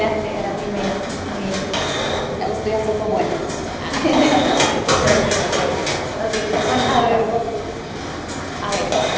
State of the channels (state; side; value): identical; both; correlation 1.00